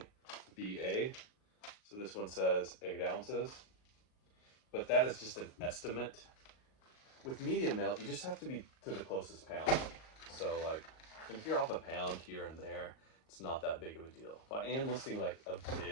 VA. So this one says 8 ounces, but that is just an estimate. With medium mail, you just have to be to the closest pound. So like, if you're off a pound here and there, it's not that big of a deal. If I am listing like a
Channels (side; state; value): right; late; 38 ms